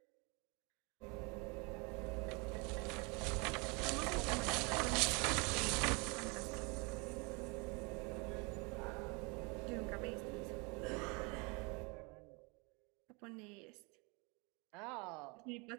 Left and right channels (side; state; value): left; quieter; 30.2 dB